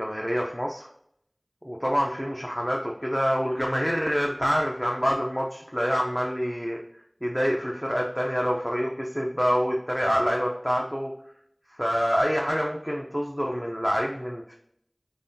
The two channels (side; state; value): both; identical; correlation 1.00